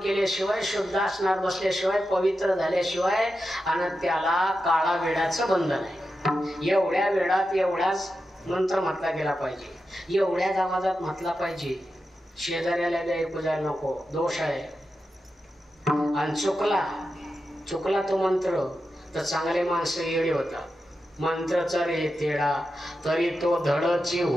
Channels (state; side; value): normal; both; correlation 0.90